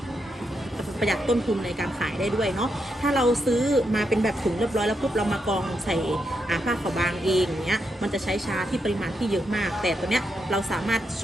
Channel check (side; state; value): both; normal; correlation 0.82